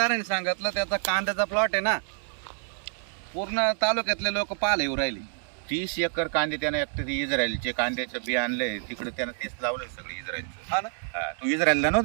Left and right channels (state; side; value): silent; left; 57 dB below the other